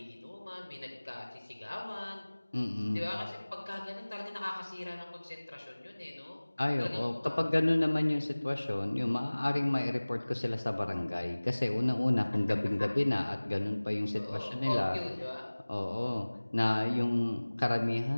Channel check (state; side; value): inverted; both; correlation -1.00